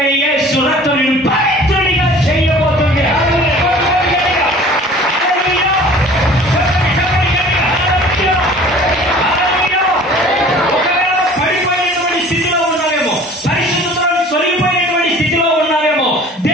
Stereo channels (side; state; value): both; normal; correlation 0.47